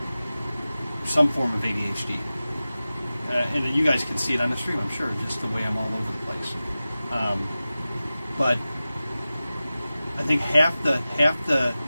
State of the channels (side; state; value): both; inverted; correlation -0.95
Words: some form of ADHD, and you guys can see it on the stream, I'm sure, just the way I'm all over the place. But I think half the